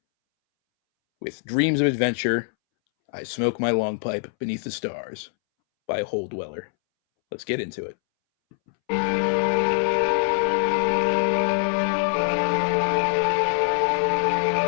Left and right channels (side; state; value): right; silent; 63 dB below the other